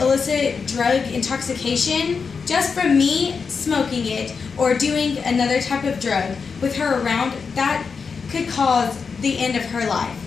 drug intoxication, just from me smoking it or doing another type of drug with her around, that could cause the end of her life.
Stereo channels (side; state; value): right; quieter; 5.4 dB